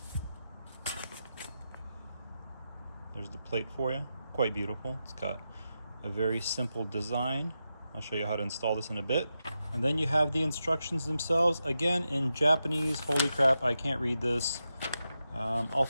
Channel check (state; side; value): inverted; both; correlation -0.88